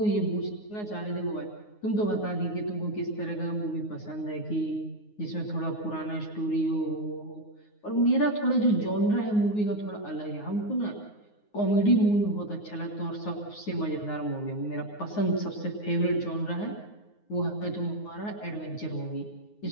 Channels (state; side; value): late; right; 9.6 ms